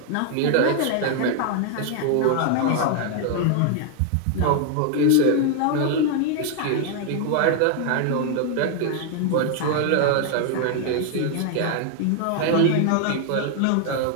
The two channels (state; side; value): different; both; correlation 0.00